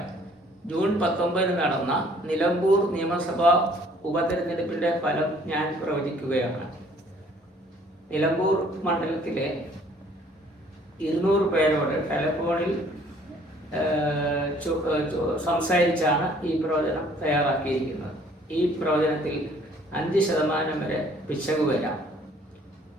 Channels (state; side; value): normal; both; correlation 0.58